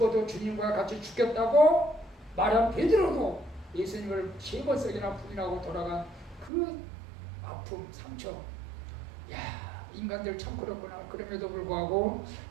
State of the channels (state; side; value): drops out; left; at 6.5 s